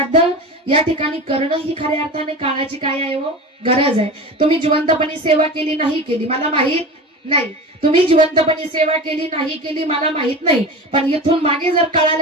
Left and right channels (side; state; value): both; normal; correlation 0.30